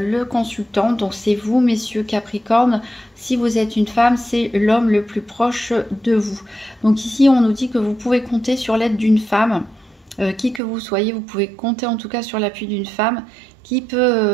consultant. Donc, c'est vous, messieurs Capricorne. Si vous êtes une femme, c'est l'homme le plus proche de vous. Donc, ici, on nous dit que vous pouvez compter sur l'aide d'une femme. Qui que vous soyez, vous pouvez compter en tout cas sur l'appui d'une femme qui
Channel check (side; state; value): left; drops out; at 10.6 s